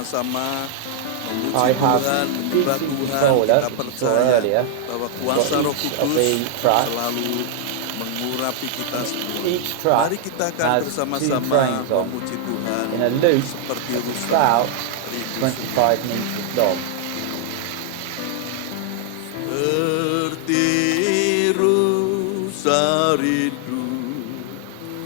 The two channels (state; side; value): different; both; correlation 0.00